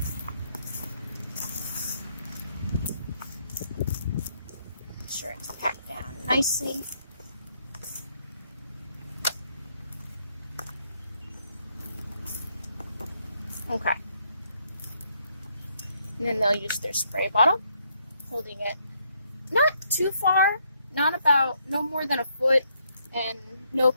Make sure it's packed down nicely. Okay. And then they'll use their spray bottle, holding it not too far, no more than a foot, and no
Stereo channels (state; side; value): inverted; both; correlation -0.73